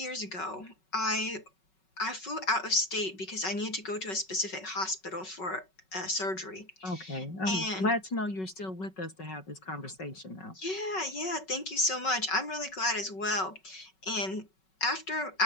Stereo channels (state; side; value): late; right; 5.3 ms